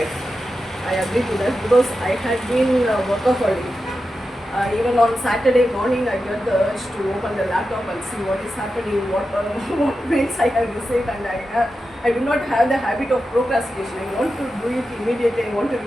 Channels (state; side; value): normal; both; correlation 0.90